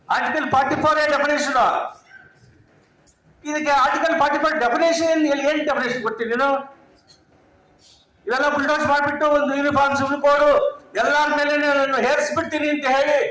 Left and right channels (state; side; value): identical; both; correlation 1.00